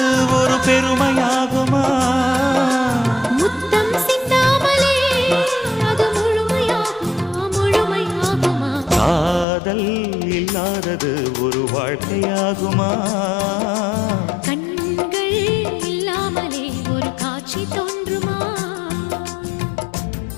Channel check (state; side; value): drops out; right; at 9.5 s